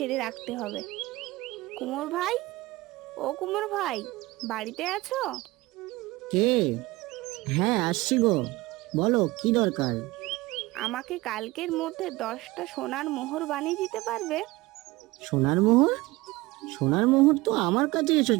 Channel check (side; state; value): left; quieter; 20.6 dB